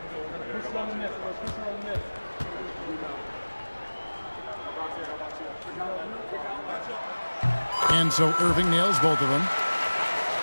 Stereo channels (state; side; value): inverted; both; correlation -1.00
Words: And so Irving nails both of them.